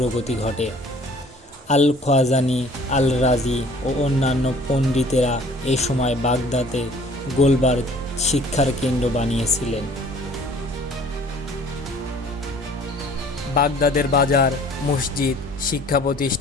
ঘটে। আল খোয়াজানি, আল রাজি ও অন্যান্য পণ্ডিতেরা এ সময় বাগদাদে গোলবার শিক্ষার কেন্দ্র বানিয়েছিলেন। বাগদাদের বাজার, মসজিদ, শিক্ষা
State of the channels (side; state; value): both; normal; correlation 0.52